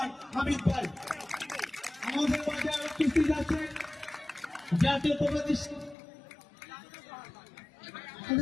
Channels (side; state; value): right; drops out; at 6.0 s